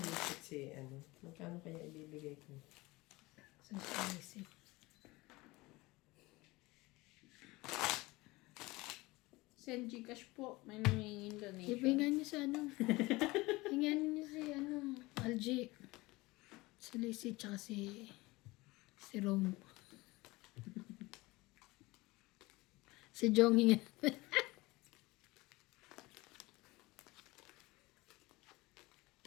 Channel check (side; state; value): right; quieter; 21.6 dB